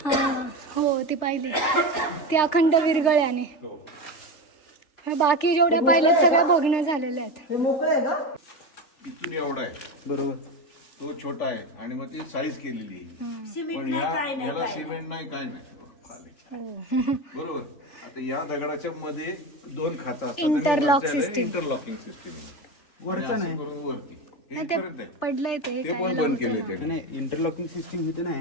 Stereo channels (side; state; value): right; late; 3.4 ms